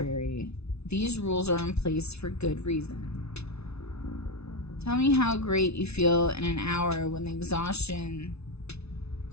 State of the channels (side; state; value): right; late; 0.80 ms